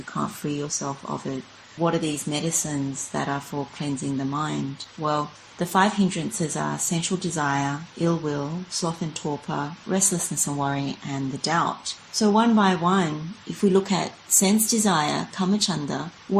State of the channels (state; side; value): identical; both; correlation 1.00